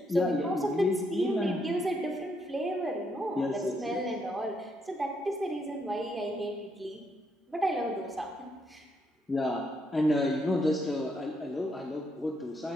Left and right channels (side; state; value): both; normal; correlation 0.76